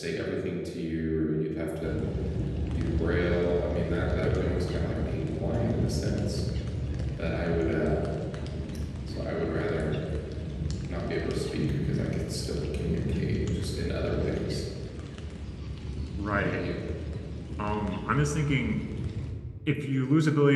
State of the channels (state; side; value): identical; both; correlation 1.00